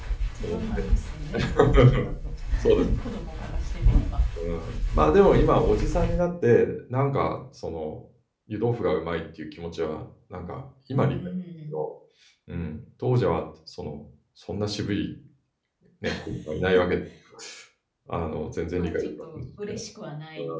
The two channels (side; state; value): both; identical; correlation 1.00